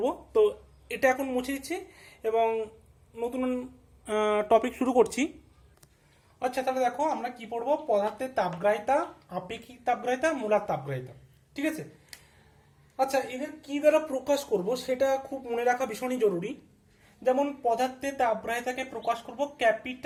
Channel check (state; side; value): identical; both; correlation 1.00